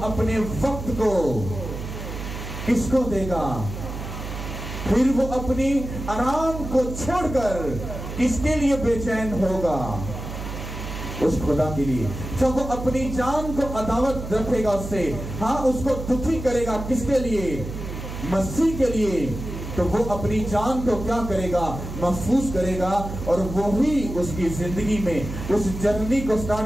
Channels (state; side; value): noise; right; hum, 8 dB below the sound